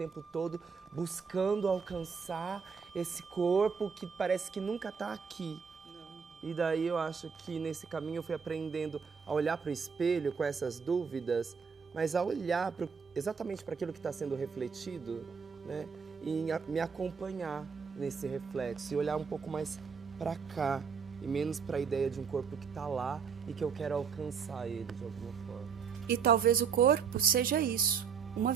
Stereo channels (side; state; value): left; quieter; 6.1 dB